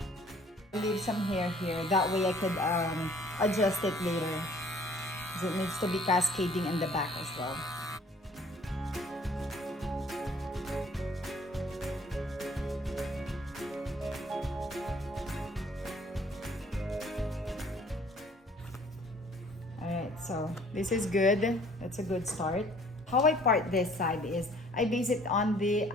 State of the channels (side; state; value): both; normal; correlation 0.56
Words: Leave some hair here. That way I could adjust it later. Because it needs to be cascading in the back as well. Alright, so this is good. That's a good start. How I part this side is I base it on the